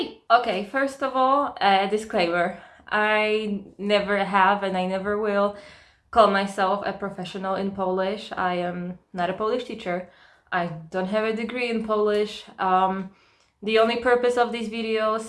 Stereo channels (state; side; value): identical; both; correlation 1.00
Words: Okay, first of all, a disclaimer. I never have and I never will call myself a professional in Polish. I am not a Polish teacher. I don't have a degree in Polish. The only purpose of these